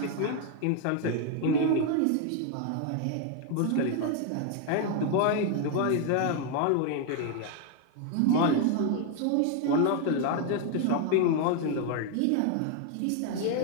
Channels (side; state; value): both; different; correlation 0.00